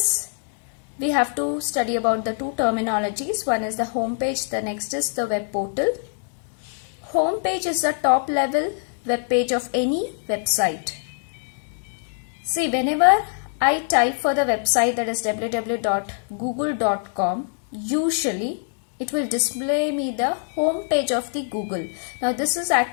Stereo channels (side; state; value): right; silent; digital silence